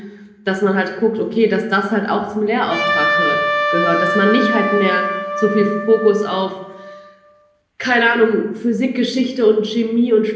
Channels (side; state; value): both; identical; correlation 1.00